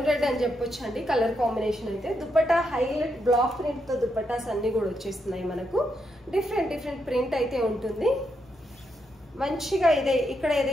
రెడ్ అని చెప్పొచ్చు అండి కలర్ కాంబినేషన్ అయితే. దుపట్టా హైలైట్ బ్లాక్ ప్రింట్ తో దుపట్టాస్ అన్ని కూడా వచ్చేస్తున్నాయి. మనకు డిఫరెంట్ ప్రింట్ అయితే ఉంటుంది. మంచిగా ఇదే ఇక్కడ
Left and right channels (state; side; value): normal; both; correlation 0.81